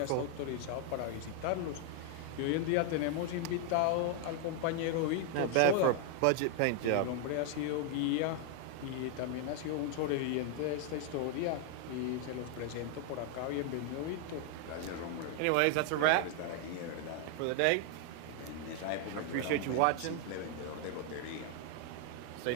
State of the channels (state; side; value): different; both; correlation 0.00